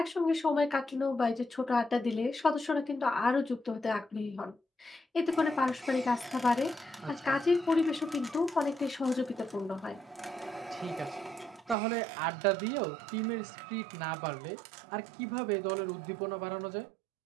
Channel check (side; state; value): left; drops out; at 11.8 s